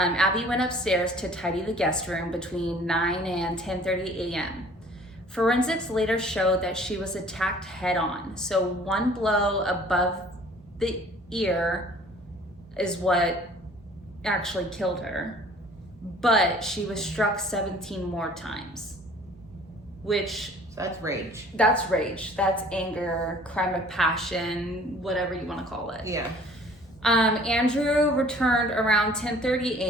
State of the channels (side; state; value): both; normal; correlation 0.52